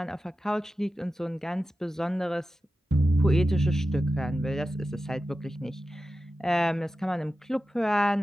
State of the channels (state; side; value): normal; both; correlation 0.93